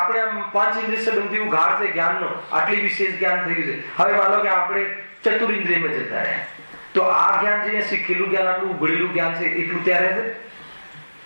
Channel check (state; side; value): inverted; both; correlation -1.00